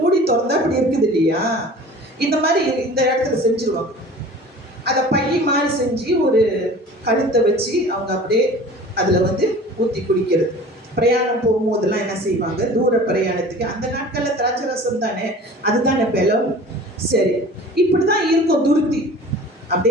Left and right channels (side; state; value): both; normal; correlation 0.42